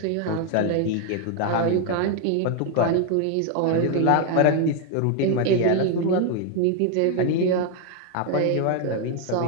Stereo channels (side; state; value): both; different; correlation 0.01